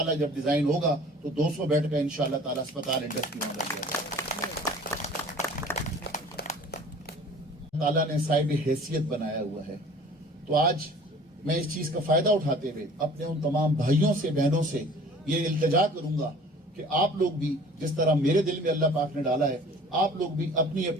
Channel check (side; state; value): both; normal; correlation 0.47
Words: जब डिजाइन होगा तो 200 बेड का इंशाल्लाह ताला अस्पताल इंडस की वहां लग जाएगा। ताला ने साहिब हैसियत बनाया हुआ है। तो आज मैं इस चीज का फायदा उठाते हुए अपने उन तमाम भाइयों से, बहनों से ये इल्तिजा करूंगा कि आप लोग भी जिस तरह मेरे दिल में अल्लाह पाक ने डाला है, आप लोग भी अपनी